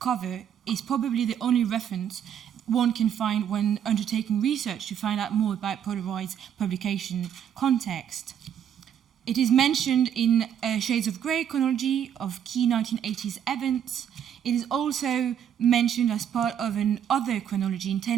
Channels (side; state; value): left; quieter; 9.1 dB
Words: is probably the only reference one can find when undertaking research to find out more about Polareyes' publication context. It is mentioned in Shades of Grey chronology of key 1980s events. It is also mentioned as part of another chronology in